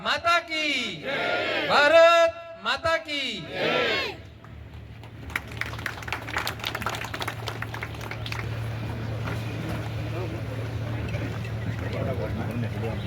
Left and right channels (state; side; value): identical; both; correlation 1.00